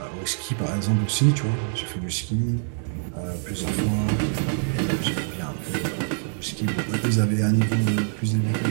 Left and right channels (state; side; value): silent; left; 62 dB below the other